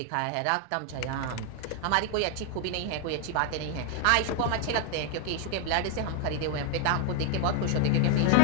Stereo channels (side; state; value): both; different; correlation 0.01